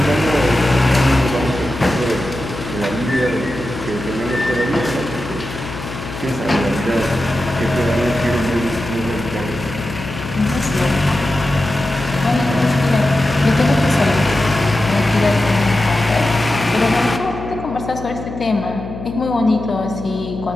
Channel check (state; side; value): noise; left; hum, 10 dB below the sound